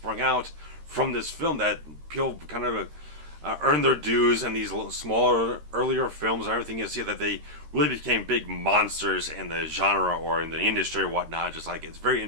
out from this film that people kind of earned their dues in these smaller, earlier films and everything. You see that they really became big monsters in the genre or in the industry or whatnot. Just like, it's very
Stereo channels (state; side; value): late; left; 13 ms